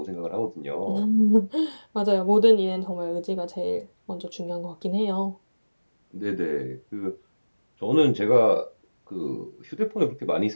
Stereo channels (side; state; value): both; inverted; correlation -1.00